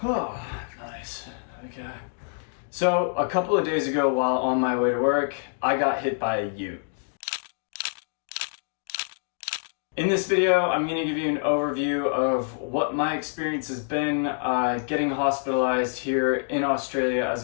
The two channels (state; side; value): silent; right; digital silence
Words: Oh, nice. Okay. So, a couple of days ago while on my way to work, I got hit by a ute. In this video, I'm going to give you an overview of what my experience has been getting hospitalized here in Australia as